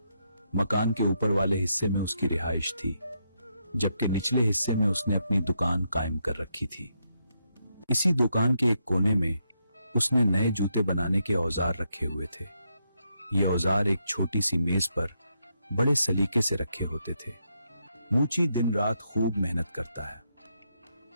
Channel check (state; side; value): inverted; both; correlation -0.80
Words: मकान के ऊपर वाले हिस्से में उसकी रिहाइश थी, जबकि निचले हिस्से में उसने अपनी दुकान कायम कर रखी थी। इसी दुकान के एक कोने में उसने नए जूते बनाने के औजार रखे हुए थे। ये औजार एक छोटी सी मेज पर बड़े सलीके से रखे होते थे। मूची दिन रात खूब मेहनत करता है,